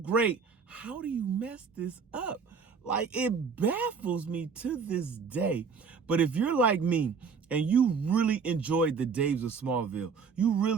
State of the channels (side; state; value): left; quieter; 5.6 dB